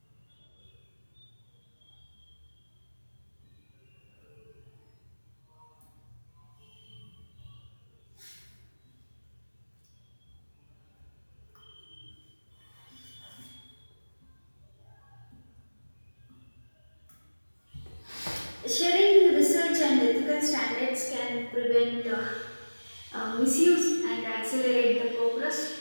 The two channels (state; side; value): inverted; both; correlation -1.00